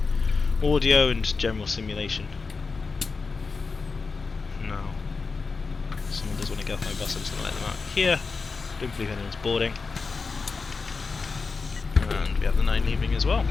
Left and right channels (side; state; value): right; quieter; 4.5 dB